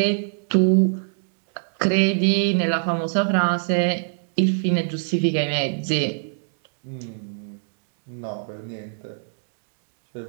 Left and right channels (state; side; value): silent; left; digital silence